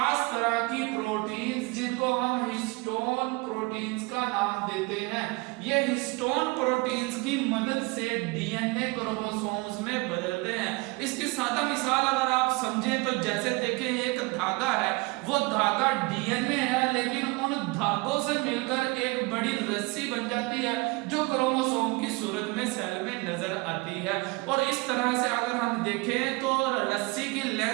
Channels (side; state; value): left; quieter; 25.5 dB